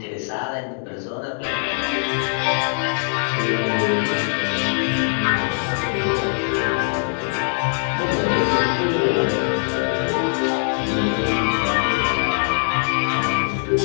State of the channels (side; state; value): right; silent; 62 dB below the other